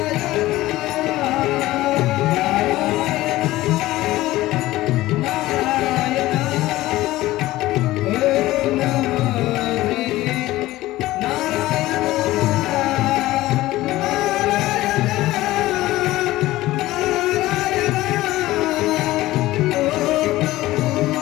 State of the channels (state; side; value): quieter; right; 17.0 dB